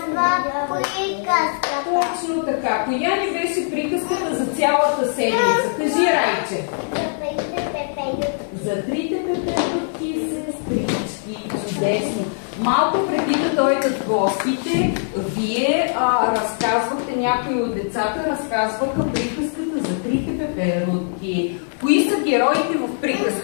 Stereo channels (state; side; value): silent; right; digital silence